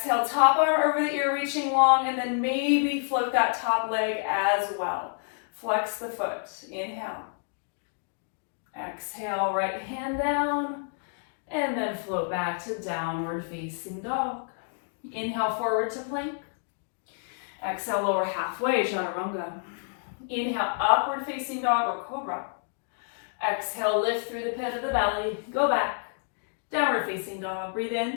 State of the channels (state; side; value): silent; right; digital silence